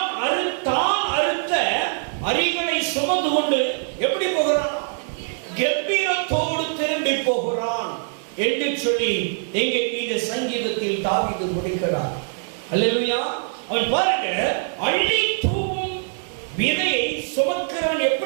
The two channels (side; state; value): left; silent; digital silence